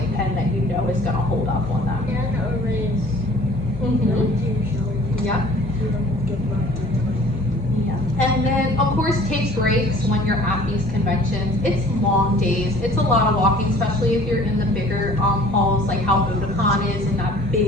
pen that you know is gonna hold up on them. Yeah. And then, of course, take breaks when you're at these conventions. It's long days. It's a lot of walking, especially if you're in the bigger halls, like how Otakon is in that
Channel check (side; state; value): both; normal; correlation 0.50